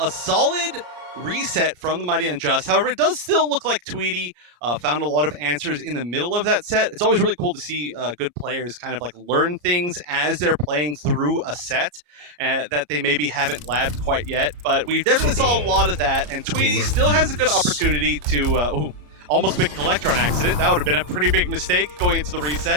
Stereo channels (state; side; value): late; left; 33 ms